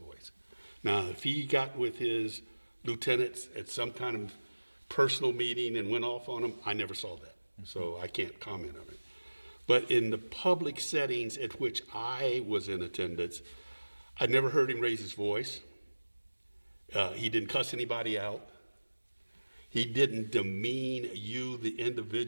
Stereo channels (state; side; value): inverted; both; correlation -1.00